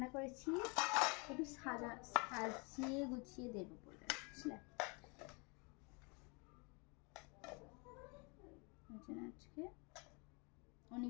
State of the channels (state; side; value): quieter; right; 31.7 dB